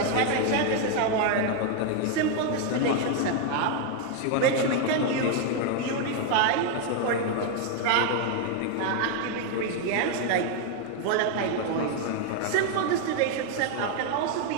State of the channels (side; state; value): both; different; correlation 0.01